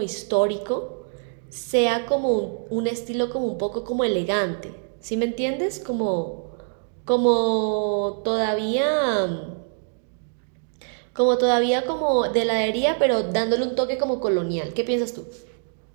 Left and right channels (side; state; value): left; silent; digital silence